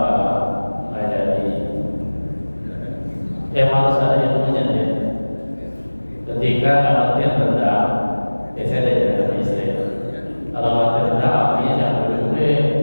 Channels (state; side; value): inverted; both; correlation -1.00